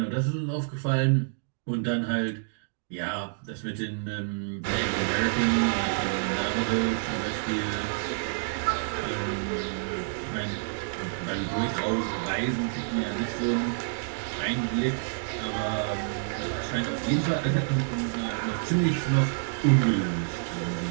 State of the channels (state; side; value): silent; left; digital silence